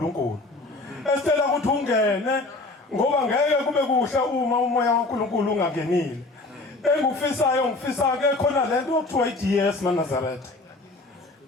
esitela ukuthi ungene ngoba ngeke kube kuhle uma umoya kaNkulunkulu ungangenile. Engikufisayo ngifisa ke khona lento okuthiwa iDS maNazaretha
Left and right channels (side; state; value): right; quieter; 3.1 dB